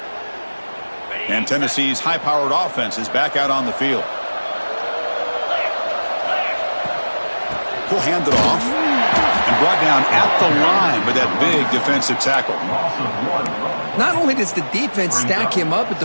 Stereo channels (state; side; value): inverted; both; correlation -1.00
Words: And Tennessee's high-powered offense is back out on the field. He'll hand it off and brought down at the line with that big defensive tackle. Not only does the defense stack him up at